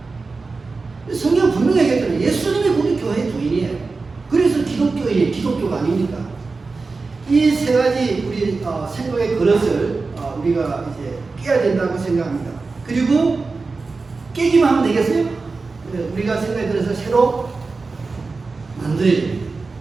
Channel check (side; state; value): left; quieter; 4.1 dB